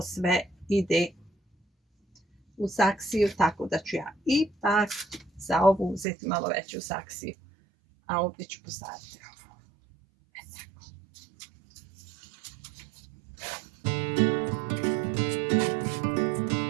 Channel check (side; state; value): left; drops out; at 6.1 s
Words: sve ide u saksiju, tako da ću ja ipak za ovu uzeti malo veću saksiju, a ovdje ću posaditi ovo.